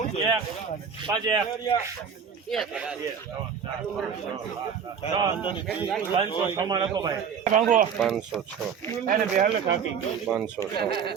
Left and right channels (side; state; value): left; quieter; 7.0 dB